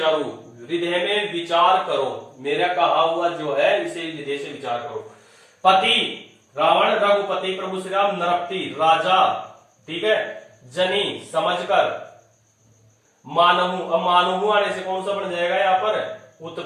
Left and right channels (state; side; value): identical; both; correlation 1.00